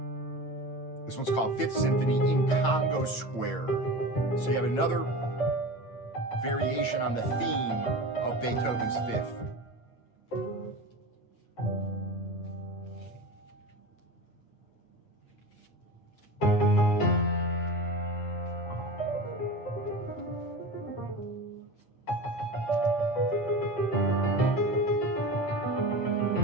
This one's called Fifth Symphony in Congo Square. So you have another variation on the theme of Beethoven's Fifth.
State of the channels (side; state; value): right; late; 8.8 ms